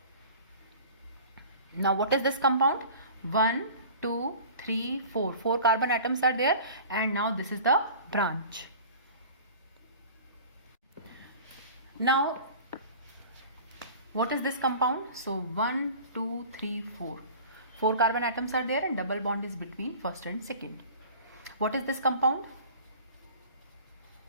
Now what is this compound? 1, 2, 3, 4. 4 carbon atoms are there, and now this is the branch. Now what is this compound? So 1, 2, 3, 4. 4 carbon atoms are there, and double bond is between first and second. What is this compound?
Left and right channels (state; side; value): inverted; both; correlation -0.42